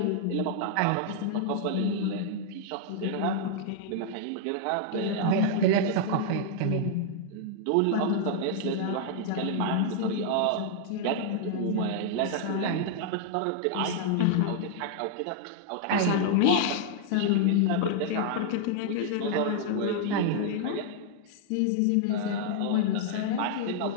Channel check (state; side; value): different; both; correlation -0.01